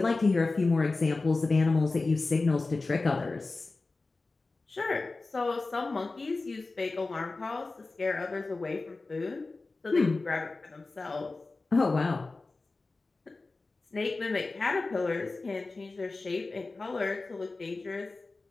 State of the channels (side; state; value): right; quieter; 3.5 dB